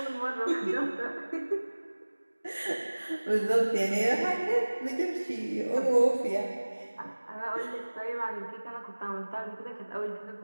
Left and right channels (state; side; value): inverted; both; correlation -1.00